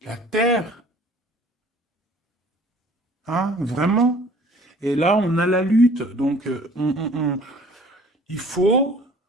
la terre. Hein, vraiment. Et là, on a la lutte. Donc, il faut,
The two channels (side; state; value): both; normal; correlation 0.51